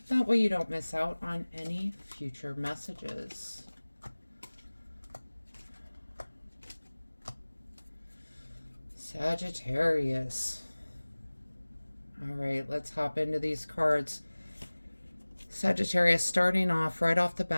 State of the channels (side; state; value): both; inverted; correlation -1.00